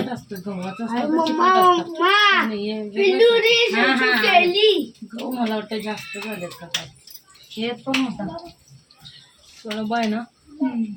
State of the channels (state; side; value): identical; both; correlation 1.00